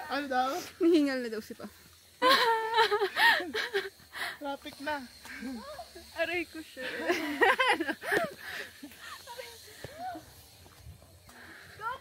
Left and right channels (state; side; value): identical; both; correlation 1.00